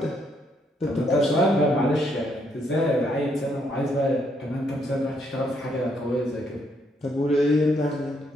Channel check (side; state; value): both; normal; correlation 0.73